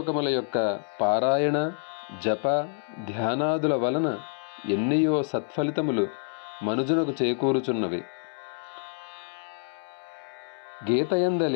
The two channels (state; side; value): silent; right; 60 dB below the other